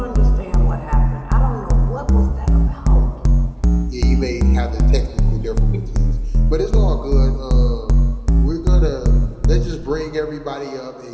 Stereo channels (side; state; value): both; identical; correlation 1.00